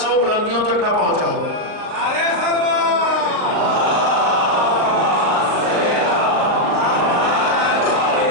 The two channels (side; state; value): left; late; 38 ms